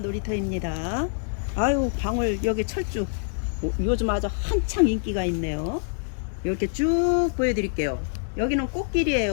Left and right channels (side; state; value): right; silent; digital silence